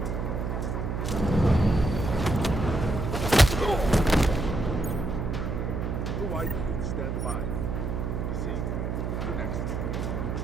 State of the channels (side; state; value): right; noise; hum, 2 dB below the sound